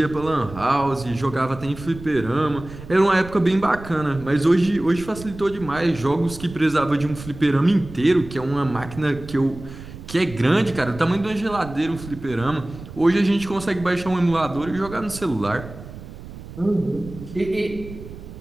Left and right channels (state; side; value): noise; right; rumble, 14 dB below the sound